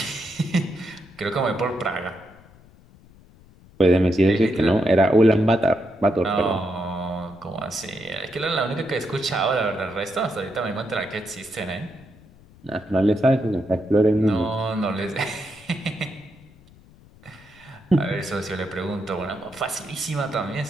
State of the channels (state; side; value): noise; left; rumble, 25 dB below the sound